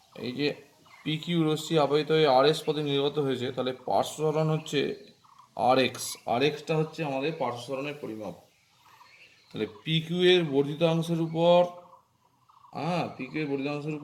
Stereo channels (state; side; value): identical; both; correlation 1.00